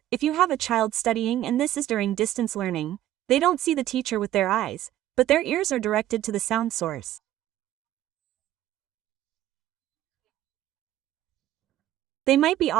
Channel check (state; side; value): quieter; left; 13.4 dB